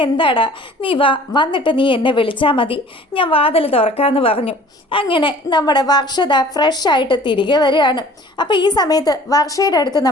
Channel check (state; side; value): normal; both; correlation 0.49